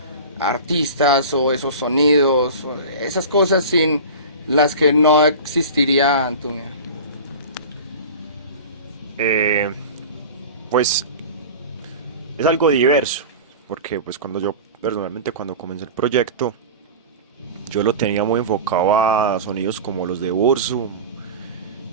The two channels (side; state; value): both; inverted; correlation -0.32